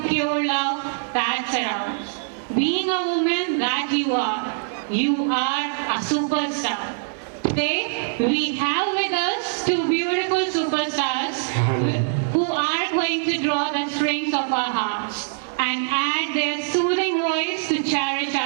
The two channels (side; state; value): left; silent; digital silence